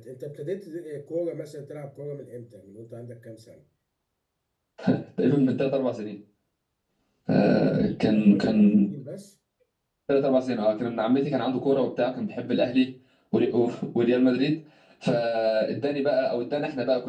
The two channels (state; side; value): identical; both; correlation 1.00